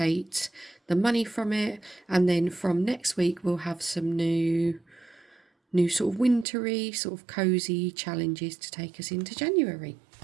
the money from it, and then from next week we'll have some new sort of wintry, sort of cozy challenges to take us into January.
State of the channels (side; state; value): left; drops out; at 6.5 s